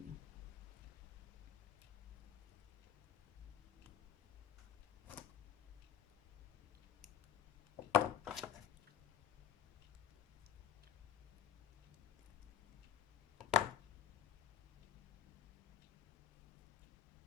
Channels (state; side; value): quieter; right; 10.2 dB